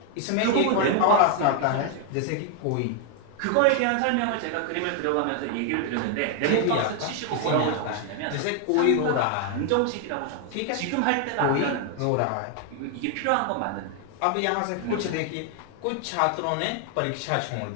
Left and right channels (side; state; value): both; different; correlation 0.00